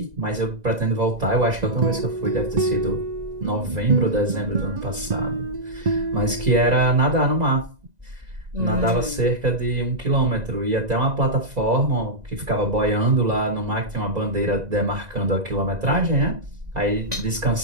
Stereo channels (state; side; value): late; left; 1.9 ms